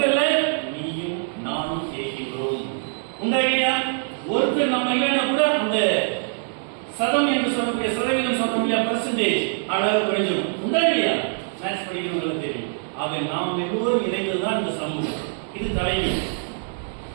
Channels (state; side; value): silent; left; 63 dB below the other